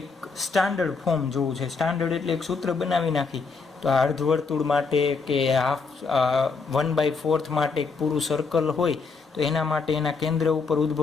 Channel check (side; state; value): right; quieter; 4.7 dB